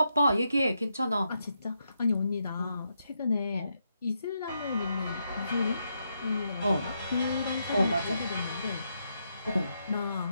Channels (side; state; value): both; inverted; correlation -0.82